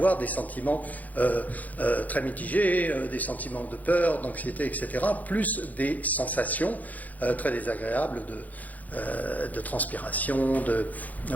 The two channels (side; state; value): right; late; 0.079 ms